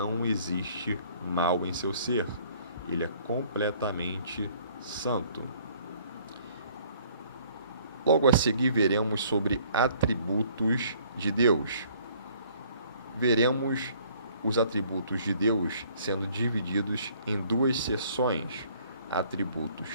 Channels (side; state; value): both; inverted; correlation -0.59